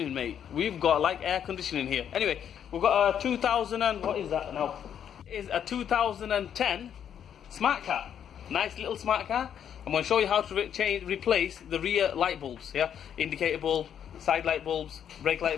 mate. We've got like air conditioning here. Anyway, we've got a 2000 and what is that now? It is a 2010 smart car. Nice little smart car. I'm going to show you how to replace the rear light bulbs. Yeah, indicator bulb, side light bulbs, brake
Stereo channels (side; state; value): right; quieter; 8.9 dB